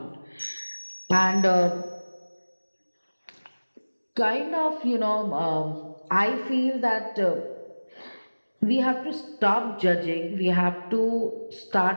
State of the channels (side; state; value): both; inverted; correlation -1.00